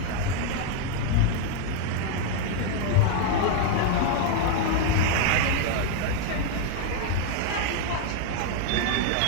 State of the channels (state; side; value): different; both; correlation 0.01